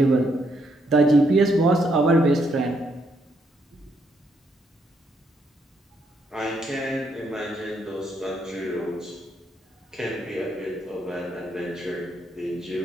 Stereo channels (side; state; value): both; normal; correlation 0.75